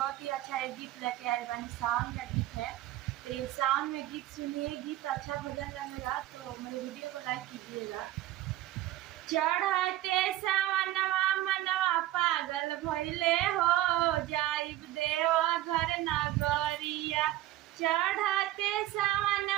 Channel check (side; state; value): left; quieter; 14.8 dB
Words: ही अच्छा एक गीत लेके आए बानी। सावन का गीत है, तो ये सावन में गीत सुनिए। गीत अच्छा भजन लगेगा तो मेरे वीडियो को लाइक कीजिएगा। चढ़ते सावनवा मनवा पागल भइले हो, जाइब देव घर नगरिया। चढ़ते